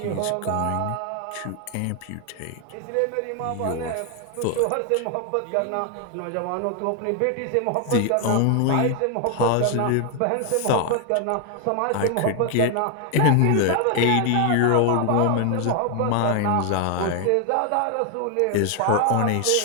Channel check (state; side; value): different; both; correlation 0.00